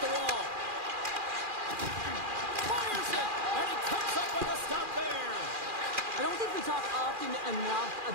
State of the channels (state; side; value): late; left; 2.4 ms